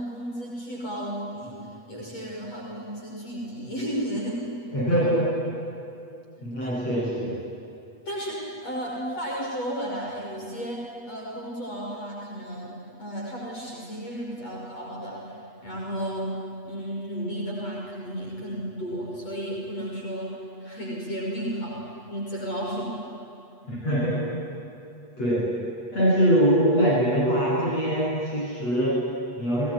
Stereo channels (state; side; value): late; right; 8.2 ms